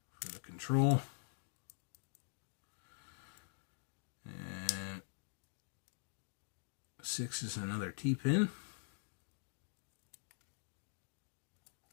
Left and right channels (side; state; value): right; silent; digital silence